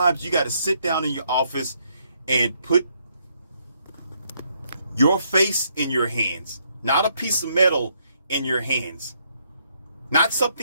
you got to sit down in your office and put your face in your hands, not a piece of metal in your hands, not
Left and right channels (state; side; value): inverted; both; correlation -0.73